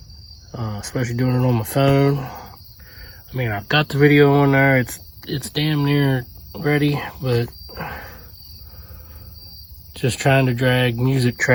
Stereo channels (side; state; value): both; identical; correlation 1.00